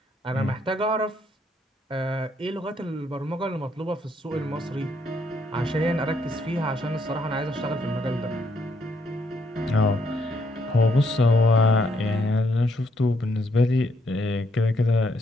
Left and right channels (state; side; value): normal; both; correlation 0.73